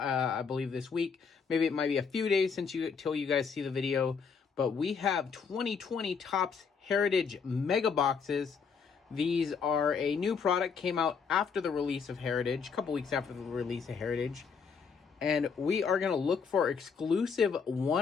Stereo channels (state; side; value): quieter; right; 5.9 dB